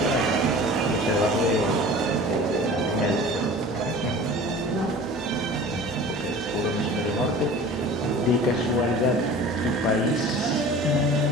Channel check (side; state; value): both; normal; correlation 0.41